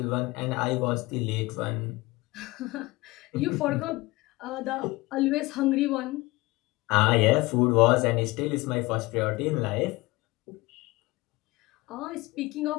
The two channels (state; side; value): quieter; right; 21.7 dB